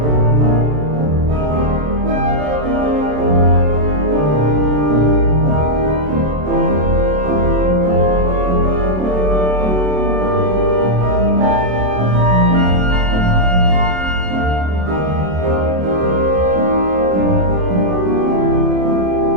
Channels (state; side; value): late; left; 27 ms